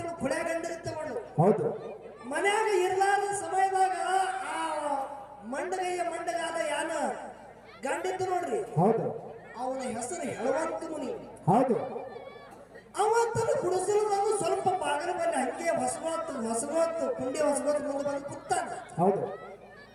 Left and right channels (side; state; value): both; identical; correlation 1.00